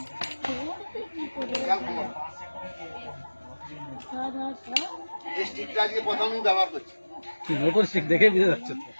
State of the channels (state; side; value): inverted; both; correlation -1.00